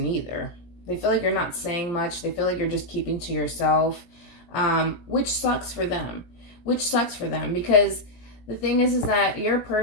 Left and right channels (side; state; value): right; late; 17 ms